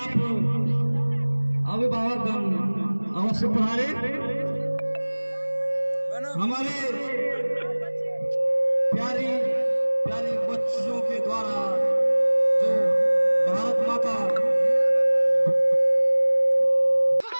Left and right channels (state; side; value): inverted; both; correlation -1.00